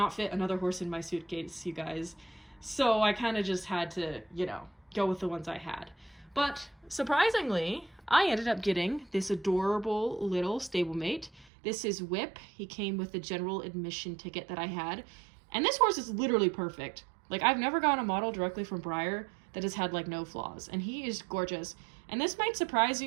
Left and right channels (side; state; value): left; drops out; at 11.5 s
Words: fit another horse in my suitcase, you guys. So I kind of just had to, you know, go with the ones I had. But surprisingly, I ended up getting this adorable little stablemate. This is Whip. He came with the general admission ticket that I had. And this horse is literally perfect. Like, I've never gotten a model directly from Breyer that has had, like, no flaws. And he is gorgeous. And this might surprise